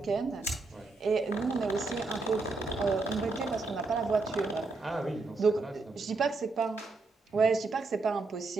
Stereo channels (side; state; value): left; quieter; 3.6 dB